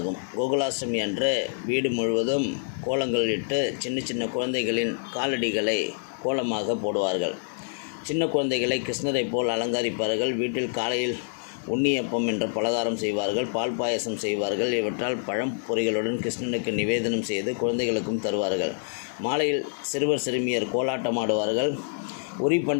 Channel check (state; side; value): silent; right; 56 dB below the other